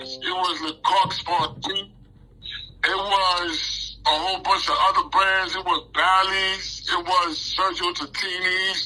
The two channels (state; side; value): identical; both; correlation 1.00